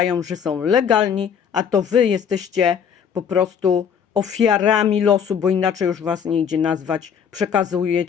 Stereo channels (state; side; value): quieter; right; 7.5 dB